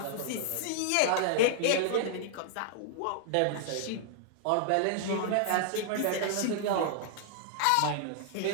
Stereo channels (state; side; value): different; both; correlation -0.01